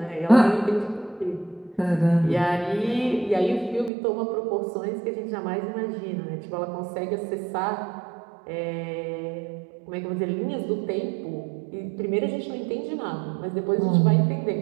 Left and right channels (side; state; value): left; drops out; at 3.9 s